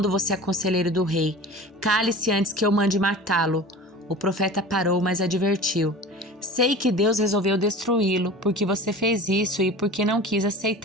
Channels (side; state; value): both; normal; correlation 0.37